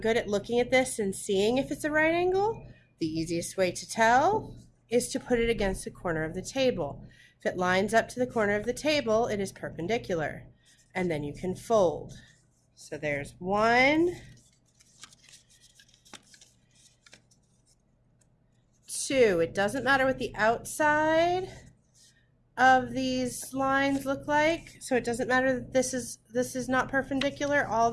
at looking at this and seeing if it's a right angle, the easiest way to tell is to put it against the corner of the table. If it lines up to the corner of the table, it is perpendicular. And then you can fold. So there's 1, 2. It doesn't matter what the outside of these lines look like. So it doesn't matter that this is not perpendicular. All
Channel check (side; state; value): both; identical; correlation 1.00